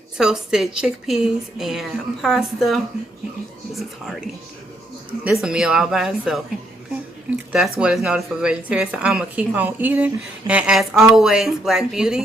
toasted chickpeas and pasta. This is hearty. This is a meal all by itself. That's what is noted for vegetarians. So I'm going to keep on eating. And as always, black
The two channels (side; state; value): both; normal; correlation 0.74